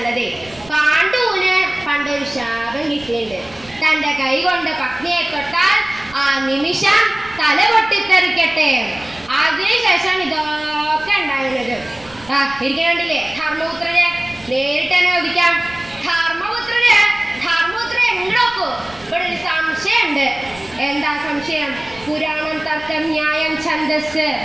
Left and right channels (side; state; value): right; noise; rumble, 24 dB below the sound